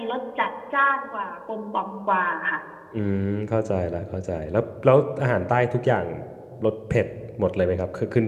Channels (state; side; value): identical; both; correlation 1.00